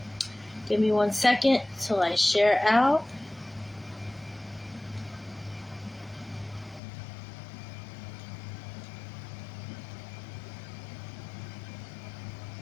Give me 1 second till I share out.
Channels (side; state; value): right; drops out; at 6.8 s